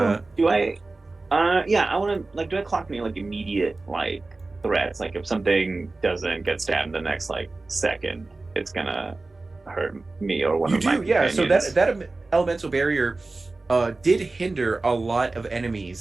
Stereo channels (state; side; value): quieter; left; 3.3 dB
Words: cool. Do I? Yeah, I want to do I clock any like immediate like threats? Like if something doesn't get stabbed the next like second, it's gonna hurt me or one You of my do, yeah. So companions. that elemental barrier did hinder a lot of